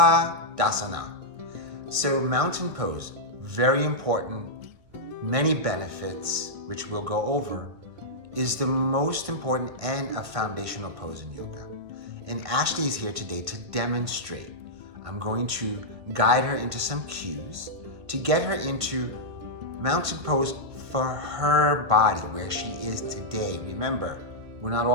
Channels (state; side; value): late; left; 1.5 ms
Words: So mountain pose, very important, many benefits, which we'll go over, is the most important and a foundational pose in yoga. And Ashley is here today to demonstrate. I'm going to guide her into some cues to get her into mountain pose for her body, where she is today. Remember, we're not